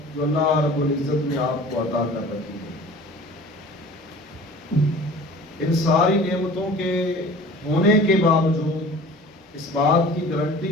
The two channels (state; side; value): normal; both; correlation 0.43